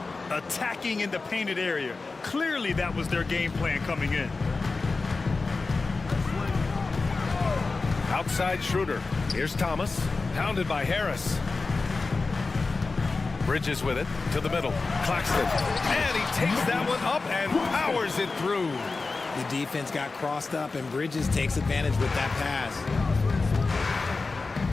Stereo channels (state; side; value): quieter; right; 3.9 dB